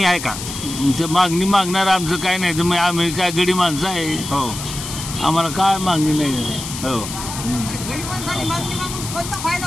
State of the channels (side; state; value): left; noise; hiss, 8 dB below the sound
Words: आहे का? ते मागणी मागणार आमचं काय नाही. तर मग आम्ही काय गडी माणसं आहे. हो. आम्हाला काय मागणी नाही. हो.